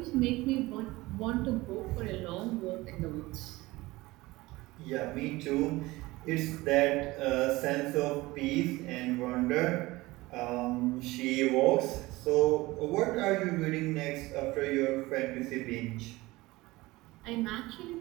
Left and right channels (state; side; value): quieter; left; 20.3 dB